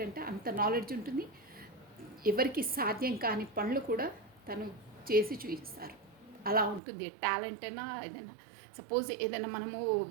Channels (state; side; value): drops out; left; at 6.8 s